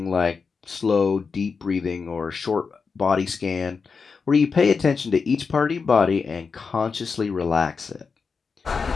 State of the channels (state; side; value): quieter; right; 5.2 dB